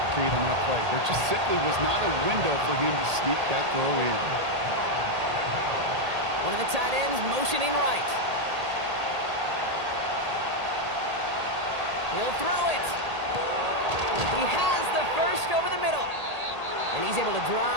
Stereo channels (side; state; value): left; late; 1.8 ms